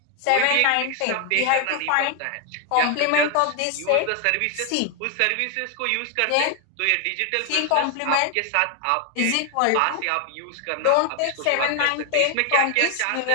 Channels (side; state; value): both; different; correlation 0.00